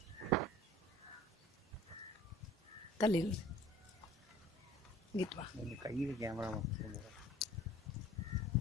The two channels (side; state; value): both; normal; correlation 0.47